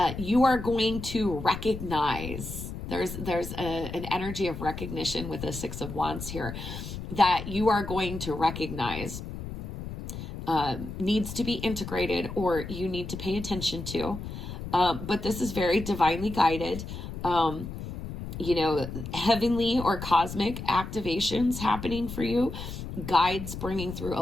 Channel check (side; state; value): left; noise; rumble, 8 dB below the sound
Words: you are going to recognize. There's an energy of recognition with the 6 of Wands here that you are going to recognize needs to be integrated, or you need to pay attention to. But this is very divinely guided. You know, heavenly or cosmic activations happening for you, guides bringing through